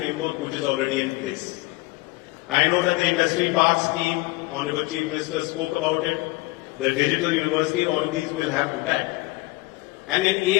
which is already in place. I know that the industry park scheme, Honorable Chief Minister spoke about it, the digital university, all of these will have impact. And in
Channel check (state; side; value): quieter; right; 22.6 dB